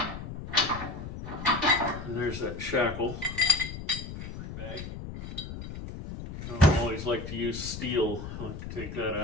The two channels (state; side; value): noise; left; rumble, 9 dB below the sound